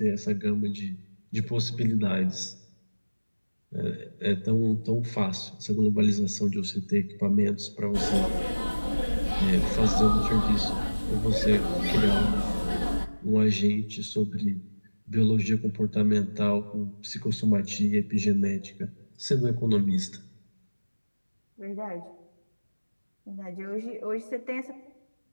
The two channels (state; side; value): inverted; both; correlation -1.00